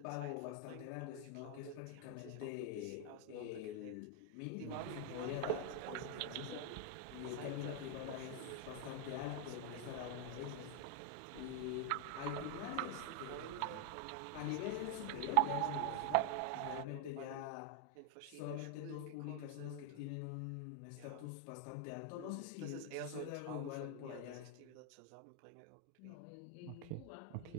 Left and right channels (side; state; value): both; different; correlation 0.00